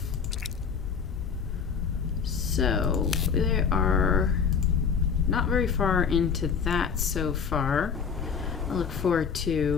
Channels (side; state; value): right; quieter; 6.4 dB